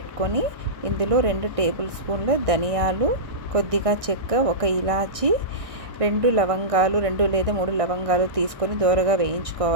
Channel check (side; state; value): left; late; 1.6 ms